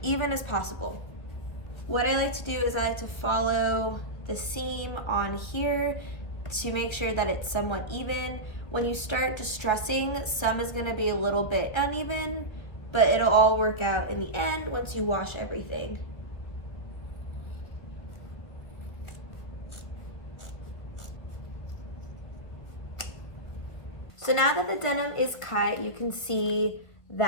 even as possible. What I like to do is I like to follow the seam on here to make sure that it's somewhat even. When you start distressing, some is gonna be a little bit uneven, but it'll all work out in the end once you wash everything. So now that the denim is cut, you can see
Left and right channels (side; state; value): right; late; 1.7 ms